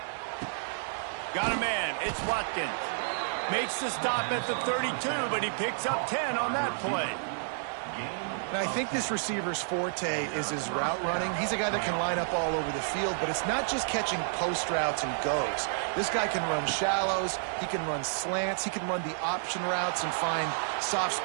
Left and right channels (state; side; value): silent; left; digital silence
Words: Got a man. It's Watkins. Makes the stop at the 32, but he picks up 10 on that play. And I think this receiver's forte is his route running. He's a guy that can line up all over the field, but it's not just catching post routes and goes. This guy can run shallows, he can run slants, he can run the option routes and find soft